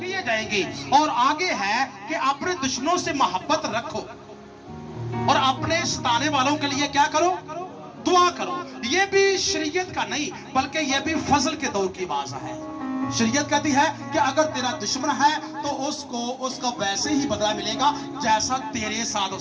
किए जाएंगे। और आगे है कि अपने दुश्मनों से मोहब्बत रखो और अपने सताने वालों के लिए क्या करो, दुआ करो। ये भी शरीयत का नहीं बल्कि ये भी फजल के दौर की बात है। शरीयत कहती है कि अगर तेरा दुश्मन है तो उसका वैसे ही बदला मिलेगा जैसा तेरे साथ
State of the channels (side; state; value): both; identical; correlation 1.00